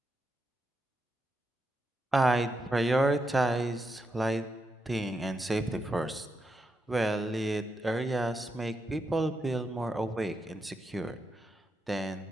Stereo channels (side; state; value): both; normal; correlation 0.84